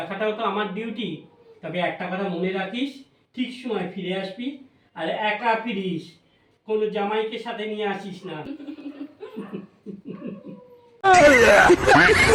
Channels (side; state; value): both; identical; correlation 1.00